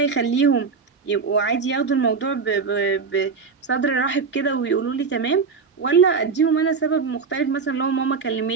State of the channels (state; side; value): quieter; left; 5.2 dB